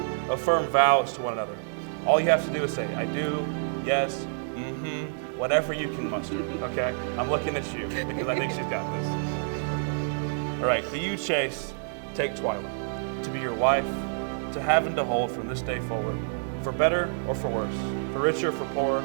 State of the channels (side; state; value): left; silent; digital silence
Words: affirm vows to one another. All you have to do is say, I do, yes, whatever you can muster, okay? I'm looking at you because I think she's got this. All right, do you, Chase, take Twyla to be your wife, to have and to hold from this day forward, for better or for worse, for richer or for poorer,